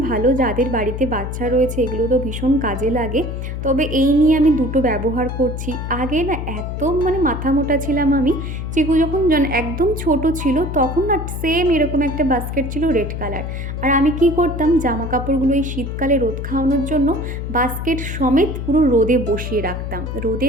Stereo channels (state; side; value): noise; left; hum, 5 dB below the sound